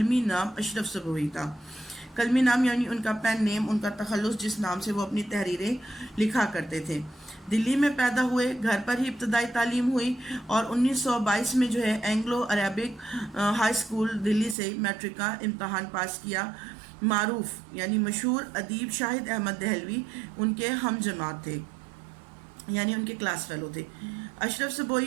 نام اشرف صبوحی تھا۔ قلمی نام یعنی ان کا پین نیم، ان کا تخلص، جس نام سے وہ اپنی تحریریں لکھا کرتے تھے۔ دلی میں پیدا ہوئے، گھر پر ہی ابتدائی تعلیم ہوئی اور 1922 میں جو ہے اینگلو عربک ہائی اسکول دلی سے میٹرک کا امتحان پاس کیا۔ معروف یعنی مشہور ادیب شاہد احمد دہلوی ان کے ہم جماعت تھے، یعنی ان کے کلاس فیلو تھے۔ اشرف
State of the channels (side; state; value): left; drops out; at 14.6 s